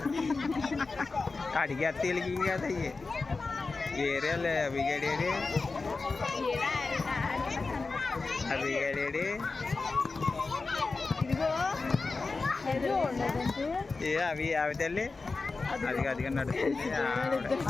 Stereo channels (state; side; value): quieter; right; 3.9 dB